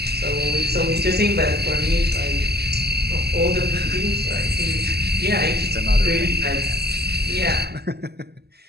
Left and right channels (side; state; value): left; late; 0.47 ms